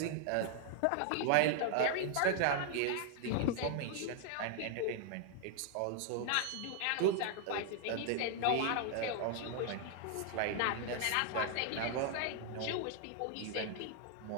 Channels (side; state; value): both; different; correlation 0.00